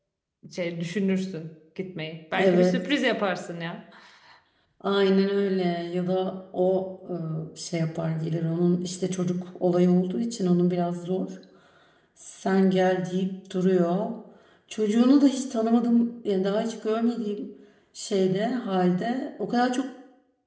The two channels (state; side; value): identical; both; correlation 1.00